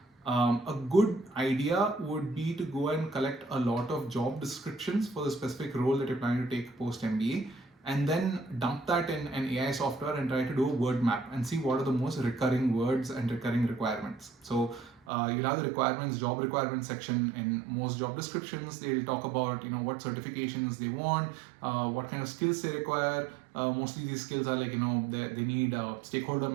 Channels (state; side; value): drops out; left; at 15.0 s